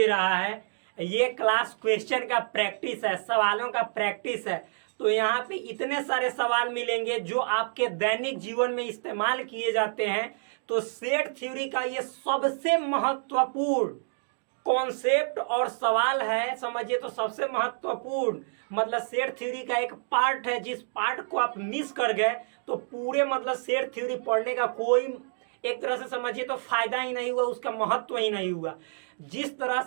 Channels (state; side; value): silent; left; digital silence